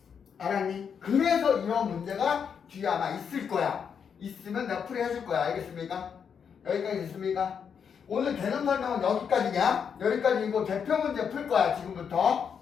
알았니? 그래서 이런 문제가 뒤에 아마 있을 거야. 있으면 내가 풀이해줄 거야. 알겠습니까? 여기까지 됐습니까? 오늘 개념 설명은 여기까지냐? 여기까지이고 대표 문제 풀 거야, 지금부터.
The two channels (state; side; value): quieter; right; 7.1 dB